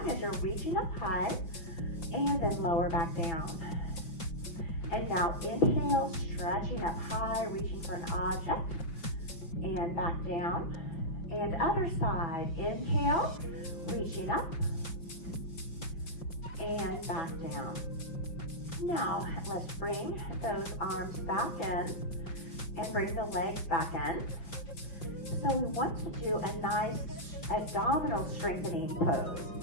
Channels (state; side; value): late; right; 6.0 ms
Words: as you're reaching up high, and then lower back down. And now inhale, stretching up high, reaching for an object, and back down. And other side, inhale, reaching up, and back down. Now let's bring those arms back in, and bring the legs back in. So we want to do a nice abdominal strengthening pose.